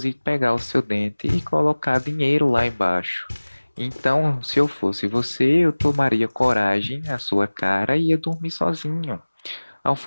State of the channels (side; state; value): both; inverted; correlation -1.00